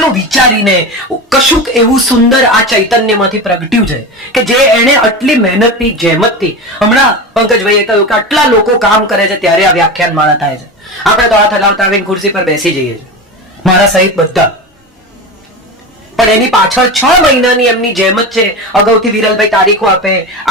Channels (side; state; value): both; normal; correlation 0.24